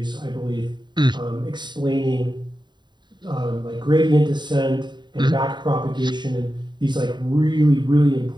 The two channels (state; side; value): late; left; 0.22 ms